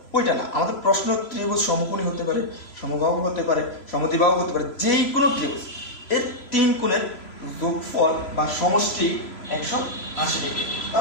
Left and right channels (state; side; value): late; right; 3.0 ms